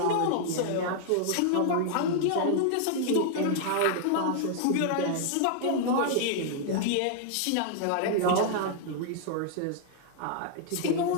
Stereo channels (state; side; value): different; both; correlation -0.01